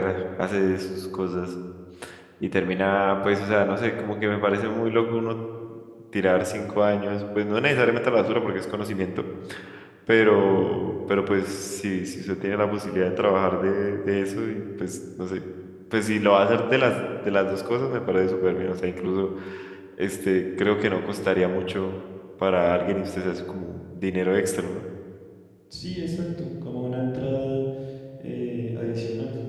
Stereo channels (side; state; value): both; identical; correlation 1.00